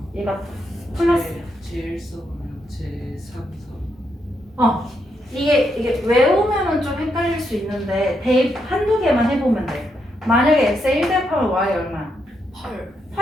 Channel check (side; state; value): both; normal; correlation 0.80